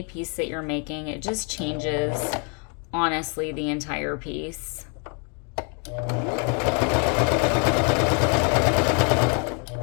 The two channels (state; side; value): quieter; right; 38.0 dB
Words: piece that you're making. It just changes, honestly, the entire piece.